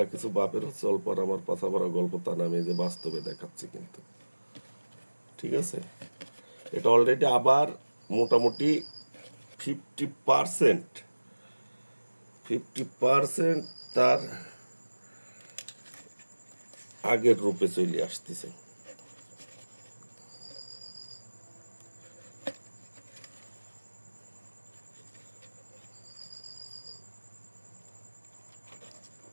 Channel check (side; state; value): both; inverted; correlation -1.00